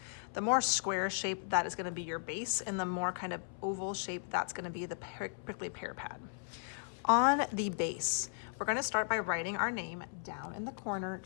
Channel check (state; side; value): silent; right; 54 dB below the other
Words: The more square shape, that is going to be your base, and the more kind of oval shape, that's going to be the prickly pear pad. On the base, we're going to start by writing our name down in the corner,